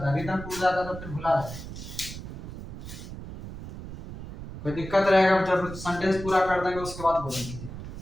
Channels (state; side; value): noise; right; rumble, 11 dB below the sound